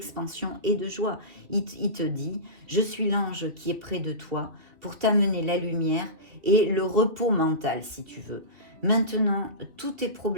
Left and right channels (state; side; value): late; left; 2.7 ms